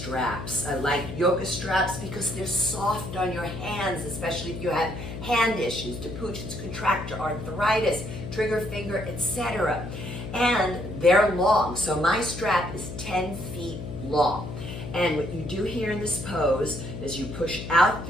I like yoga straps because they're soft on your hands, especially if you have hand issues, depuctions, contracture, arthritis, trigger finger, etc. And they're long. So my strap is 10 feet long. And what you do here in this pose is you push out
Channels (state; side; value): noise; left; hum, 8 dB below the sound